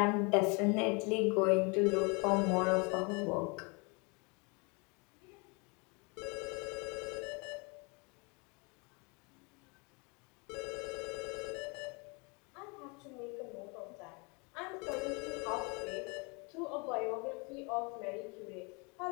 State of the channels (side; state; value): right; quieter; 31.2 dB